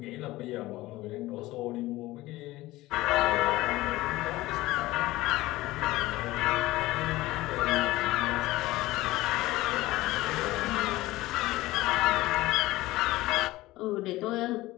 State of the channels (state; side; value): quieter; right; 18.2 dB